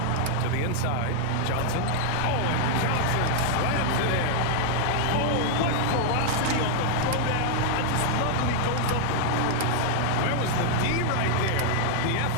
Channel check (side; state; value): both; different; correlation 0.00